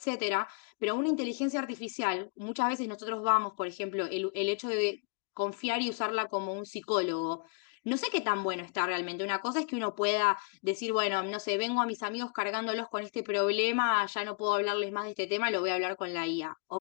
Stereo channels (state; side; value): quieter; right; 35.8 dB